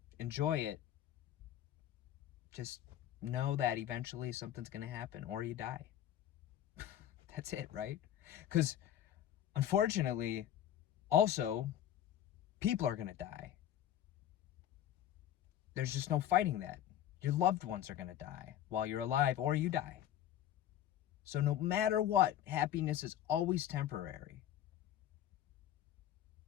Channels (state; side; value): quieter; right; 11.4 dB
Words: enjoy it, just know that eventually something's going to happen, or you die. That's it, right? Because unfortunately, also, people are going to die. There's just no fighting that. Your loved ones are going to die while you're alive, or you die. So no matter what, happiness is always temporary.